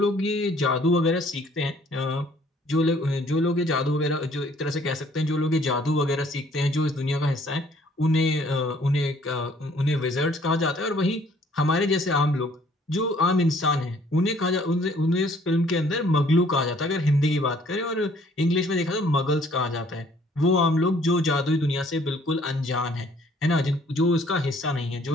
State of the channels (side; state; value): both; normal; correlation 0.60